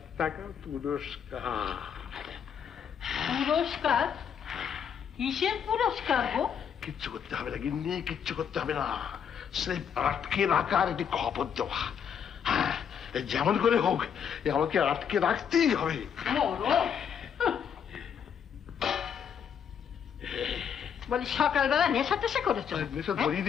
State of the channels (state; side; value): quieter; right; 7.8 dB